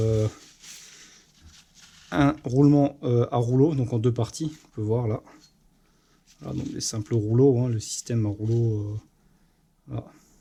un roulement à rouleau, donc en deux parties, on peut voir là. Voilà, donc les simples rouleaux, hein, le système à rouleau, voilà,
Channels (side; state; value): both; identical; correlation 1.00